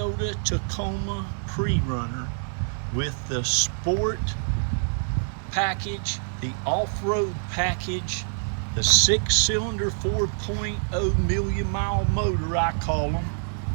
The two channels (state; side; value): silent; left; digital silence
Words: Tacoma Prerunner with the sport package, the off-road package, the 6-cylinder 4.0 million mile motor, I call them,